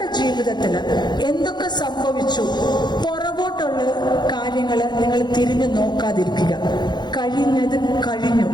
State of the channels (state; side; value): late; right; 0.21 ms